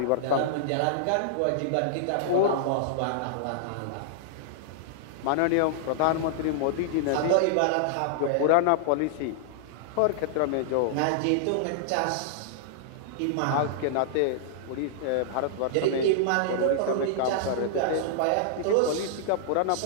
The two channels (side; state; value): both; different; correlation -0.01